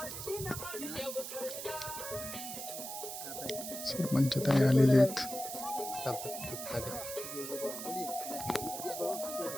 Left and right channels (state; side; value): noise; right; hiss, 7 dB below the sound